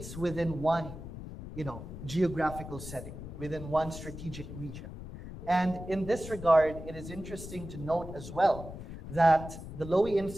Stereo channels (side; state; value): left; noise; rumble, 11 dB below the sound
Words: within one, you know, geographical setting, within one strategic region. And in this regard, it is interesting to note as well that the Lowy